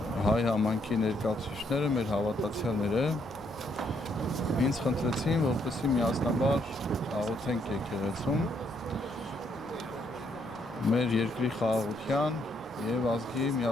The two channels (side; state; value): both; normal; correlation 0.72